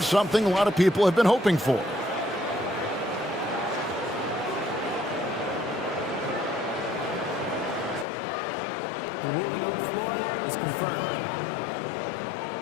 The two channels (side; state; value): right; drops out; at 8.1 s